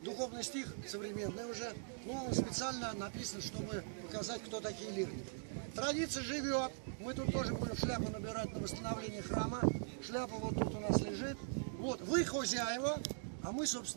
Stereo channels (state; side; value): silent; left; digital silence